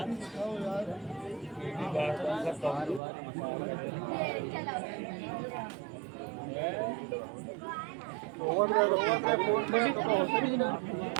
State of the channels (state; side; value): drops out; left; at 3.0 s